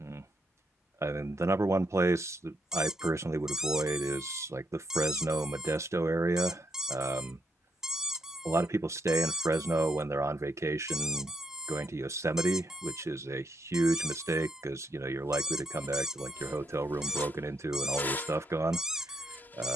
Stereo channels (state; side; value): normal; both; correlation 0.77